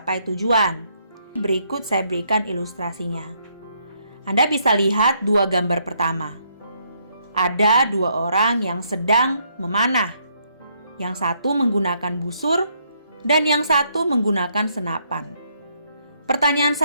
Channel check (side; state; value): both; inverted; correlation -0.72